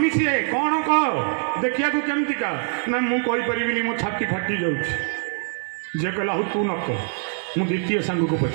ସିଏ କ'ଣ କହ ଦେଖିବାକୁ କେମିତିକା ନା ମୁଁ କହିପାରିବିନି ମୋ ଛାତି ଫାଟି ଯାଉଛି ଝିଅ କହିଲା ହଉ ତୁ ନ କହ ମୁଁ ଦ୍ୱିତୀୟ ସାଙ୍ଗକୁ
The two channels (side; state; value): left; silent; digital silence